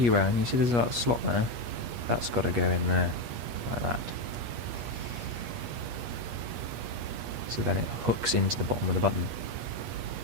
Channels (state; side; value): late; left; 8.4 ms